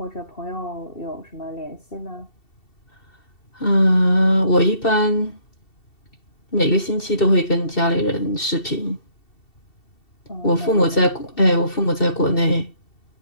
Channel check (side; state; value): right; late; 2.7 ms